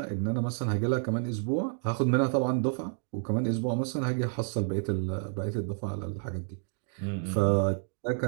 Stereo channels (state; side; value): silent; left; 58 dB below the other